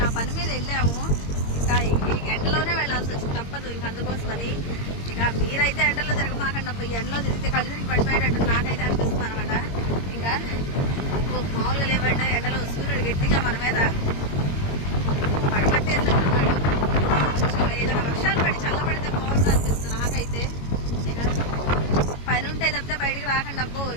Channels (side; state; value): right; late; 22 ms